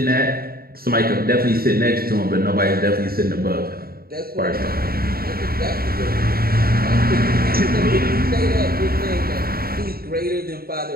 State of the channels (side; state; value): left; late; 0.44 ms